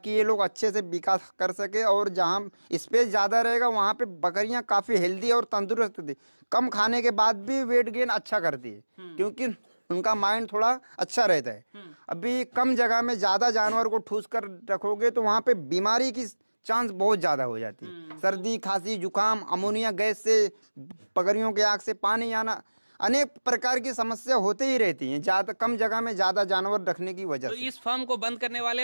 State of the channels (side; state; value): both; inverted; correlation -1.00